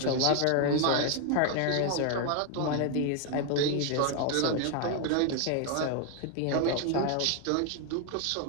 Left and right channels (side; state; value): both; different; correlation 0.01